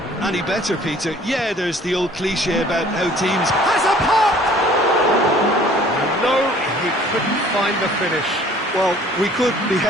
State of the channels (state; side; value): normal; both; correlation 0.53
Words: any better, Peter. Yeah, there's the old cliche about how teams... Has a pop! No, he couldn't find the finish. Well, we could be